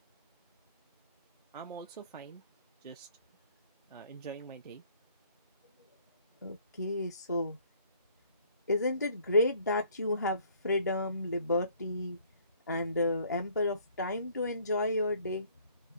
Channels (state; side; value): inverted; both; correlation -0.60